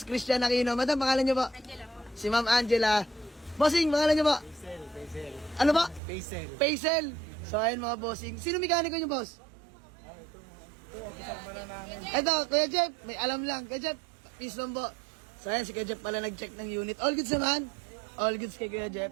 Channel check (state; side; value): drops out; left; at 6.0 s